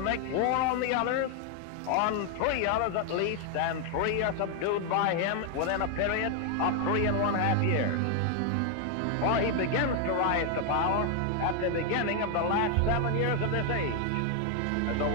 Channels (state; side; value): different; both; correlation 0.00